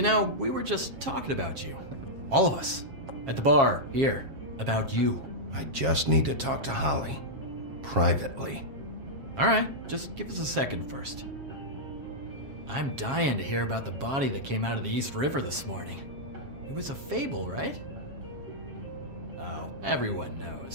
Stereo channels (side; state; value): left; late; 7.4 ms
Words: know, we were just talking about you. All of us. At the bar, here. About you. I just need to talk to Holly. Privately. Alright, just give us a second first. I'm dying to hear about the body that came out of the East River this morning. It was a fable, right? Oh, everyone